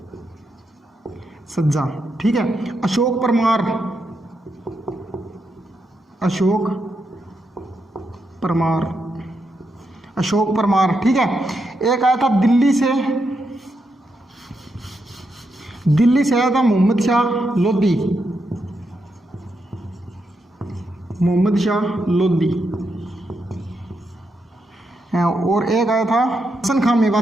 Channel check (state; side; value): normal; both; correlation 0.83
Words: सज्जा। ठीक है, अशोक परमार, अशोक परमार, अशोक परमार। ठीक है, एक आया था दिल्ली से आया था मोहम्मद शाह लोधी, मोहम्मद शाह लोधी। और एक आया था हसन खां